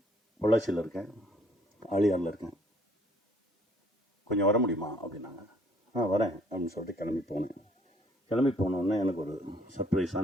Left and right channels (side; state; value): both; normal; correlation 0.62